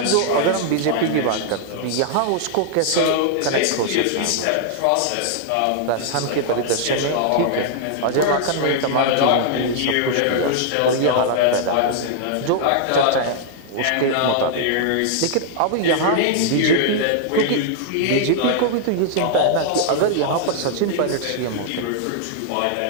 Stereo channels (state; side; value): different; both; correlation -0.01